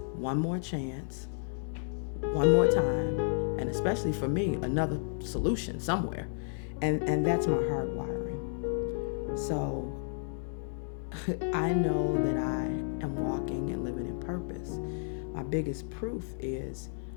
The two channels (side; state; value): right; silent; digital silence